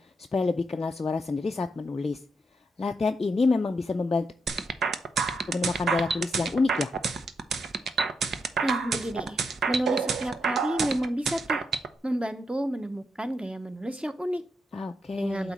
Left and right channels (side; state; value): both; normal; correlation 0.82